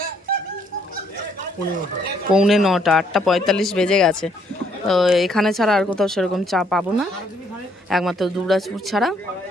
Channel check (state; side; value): normal; both; correlation 0.68